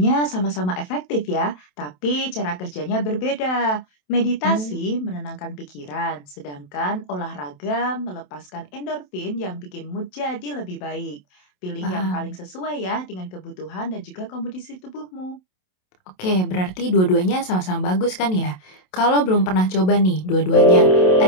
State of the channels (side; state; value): right; late; 27 ms